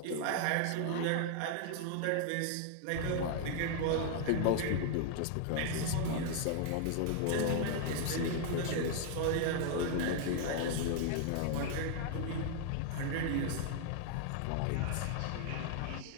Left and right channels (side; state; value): both; different; correlation 0.00